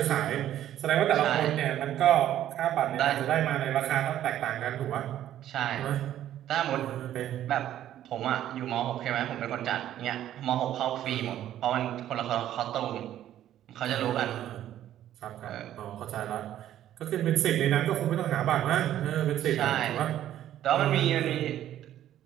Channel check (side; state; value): left; quieter; 12.0 dB